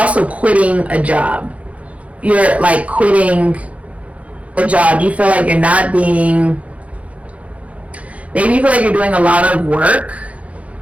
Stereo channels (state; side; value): late; left; 0.065 ms